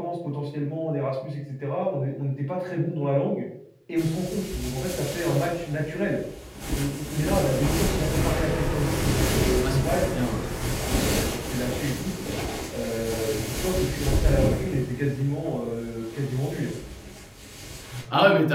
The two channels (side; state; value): both; identical; correlation 1.00